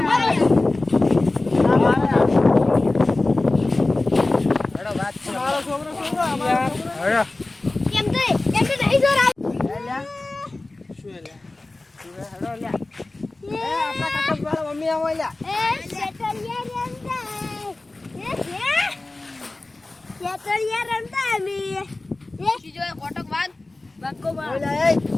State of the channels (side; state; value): right; quieter; 3.0 dB